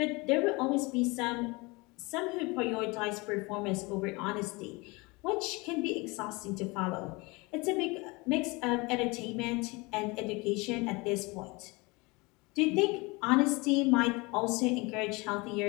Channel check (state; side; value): quieter; right; 25.5 dB